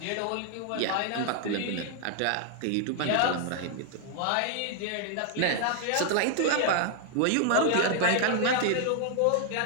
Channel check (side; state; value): both; different; correlation 0.00